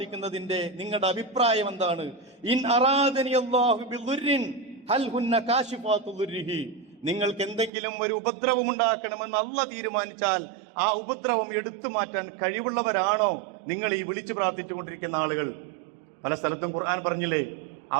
നിങ്ങളുടെ അഭിപ്രായം എന്താണ്? ഇൻ അറാദനി അല്ലാഹു ബിദുർരിൻ ഹൽ ഹുന്ന കാശിഫാതു ദുർരിഹി. നിങ്ങൾക്ക് എന്തെങ്കിലും ഒരു ഉപദ്രവം ഉണ്ടാക്കണമെന്ന് അല്ലാഹ് തീരുമാനിച്ചാൽ ആ ഉപദ്രവം എടുത്തു മാറ്റാൻ കഴിവുള്ളവരാണോ നിങ്ങൾ ഈ വിളിച്ചു പ്രാർത്ഥിച്ചുകൊണ്ടിരിക്കുന്ന ആളുകൾ? പല സ്ഥലത്തും ഖുർആൻ പറഞ്ഞില്ലേ,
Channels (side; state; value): left; drops out; at 7.7 s